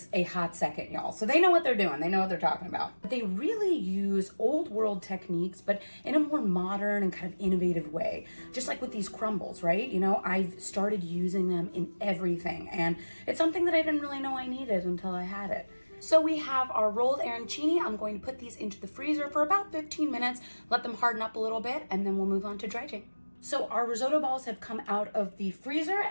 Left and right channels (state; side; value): inverted; both; correlation -1.00